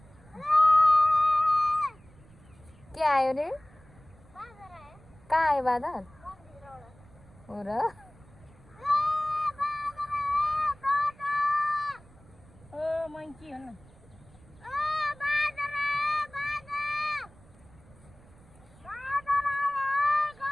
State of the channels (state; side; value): noise; right; rumble, 25 dB below the sound